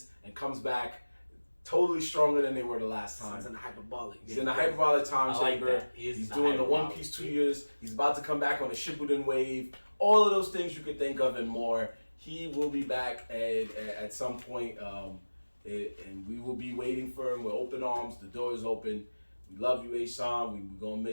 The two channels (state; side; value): inverted; both; correlation -1.00